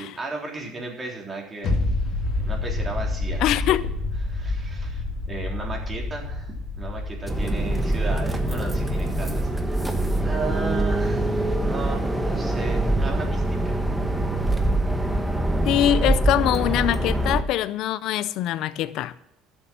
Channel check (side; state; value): both; normal; correlation 0.69